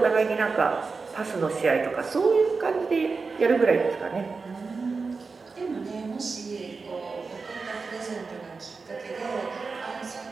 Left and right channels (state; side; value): quieter; left; 4.5 dB